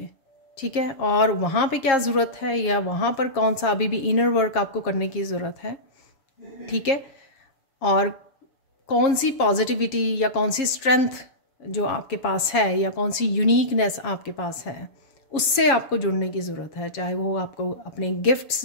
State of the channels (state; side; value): late; right; 7.0 ms